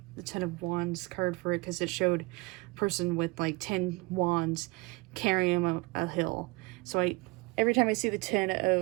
Ten of Wands card for it, because it showed a person with like 10 wands carrying a hill. So every time I see the Ten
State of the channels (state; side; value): quieter; left; 25.6 dB